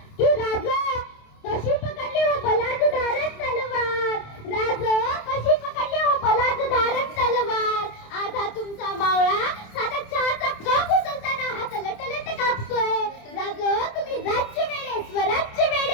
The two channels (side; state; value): right; late; 27 ms